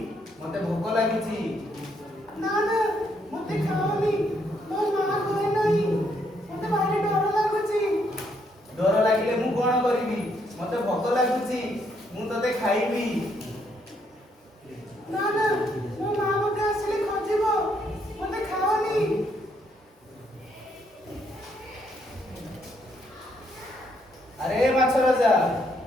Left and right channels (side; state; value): both; normal; correlation 0.73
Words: ମତେ ଭୋକ ଲାଗିଛି। ନା ନା ମତେ ଖାଅନି, ମୋ ମା କହେ ନାହିଁ। ମତେ ଭାରି ଡର ଲାଗୁଛି। ଡର ଲାଗିଲେ ମୁଁ କଣ କରିବି? ମତେ ଭୋକ ଲାଗୁଛି, ମୁଁ ତତେ ଖାଇବି। ନା ନା ମୋ ମା ମତେ ଆସିଲେ ଖୋଜିବ। ମତେ ଖାଅନି। ଆରେ ମାଛ ରାଜା,